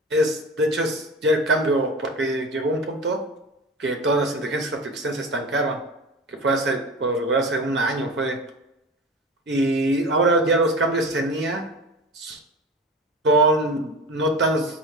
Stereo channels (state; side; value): normal; both; correlation 0.32